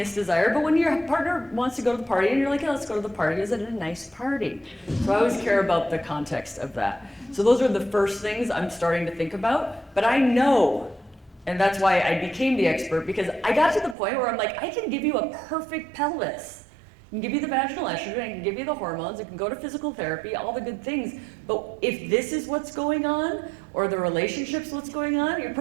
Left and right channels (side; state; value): left; drops out; at 14.0 s